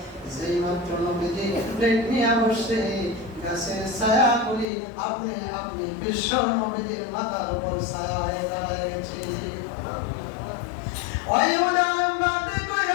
যেই মাত্র নবীজি প্লেট নিয়ে বসে, গাছের ছায়াগুলি আপনি আপনি বিশ্ব নবীজির মাথার উপর ছায়া হয়ে দাঁড়িয়ে গেছে। ওই উদাহরণ বাদে কই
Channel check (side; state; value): right; drops out; at 4.7 s